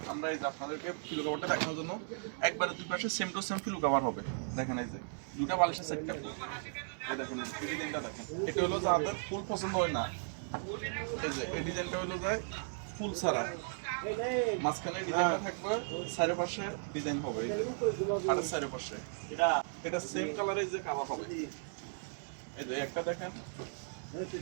আমরা এই যে আপনাদেরকে ফিলু কভারটা দেখানোর জন্য একবারে দুই পাশে সেম টু সেম ফিলু কভার হবে। দেখেন এই যে দুটা বালিশের সেটটা, এই দেখেন এই ডিজাইনটা দেখেন। এটা হলো যাদের ফুল পছন্দ হয় না, এই যে এই ডিজাইনটা হলো যায় ফুল ছাড়া, মাঝখানে ডিজাইনটা থাকবে, চারিপাশে ডিজাইন হবে, এই যে আর চারিপাশে এটা সেম কালারের যে কাভার হবে। এই যে একটা দেখেন,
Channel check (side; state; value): left; silent; digital silence